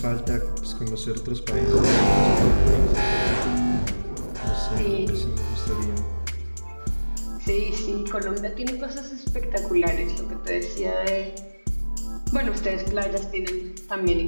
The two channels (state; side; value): inverted; both; correlation -1.00